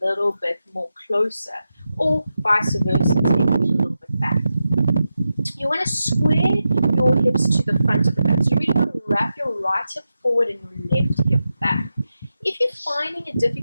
bit more closer, or vice versa, take it a little bit back. You want to square your hips to the front of the mat. So you really want to wrap your right hip forward and your left hip back. If you're finding it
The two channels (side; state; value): both; inverted; correlation -0.89